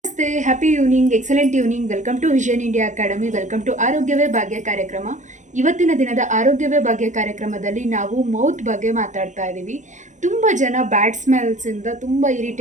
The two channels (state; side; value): late; left; 0.35 ms